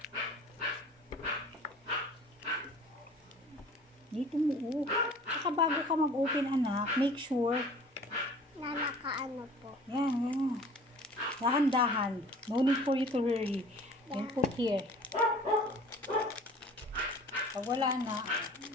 Dito mo, Saka bago ka mag-open, anak, make sure. Na nakaano po. Yan, yan. Dahan-dahan. No need for you to hurry. Then put here. Pag wala na,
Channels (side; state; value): both; normal; correlation 0.47